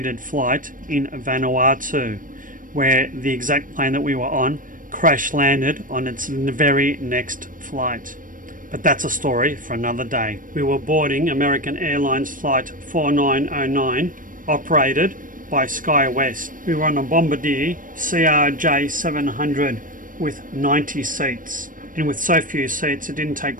flight in Vanuatu, where the exact plane that we were on crash landed on its very next flight. But that's a story for another day. We were boarding American Airlines flight 4909, operated by SkyWest. We were on a Bombardier CRJ700 with 90 seats. And with so few seats, it didn't take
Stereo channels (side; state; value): left; late; 0.39 ms